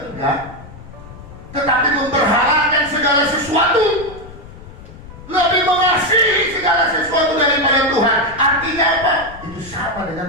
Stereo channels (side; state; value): left; noise; rumble, 17 dB below the sound